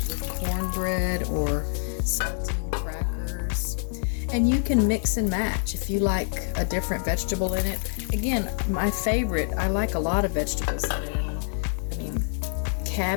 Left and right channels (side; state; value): right; silent; 55 dB below the other